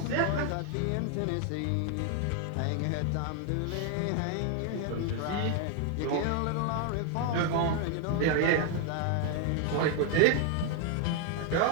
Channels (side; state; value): both; different; correlation 0.01